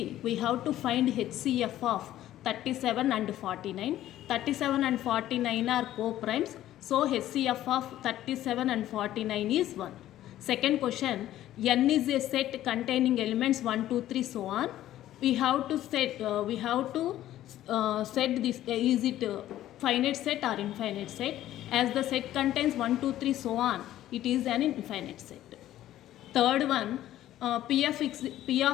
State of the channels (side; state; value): right; quieter; 13.3 dB